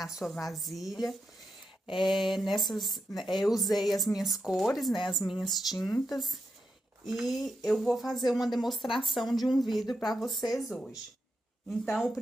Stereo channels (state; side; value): normal; both; correlation 0.86